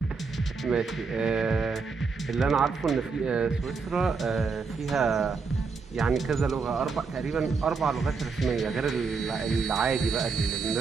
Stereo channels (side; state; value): left; quieter; 4.8 dB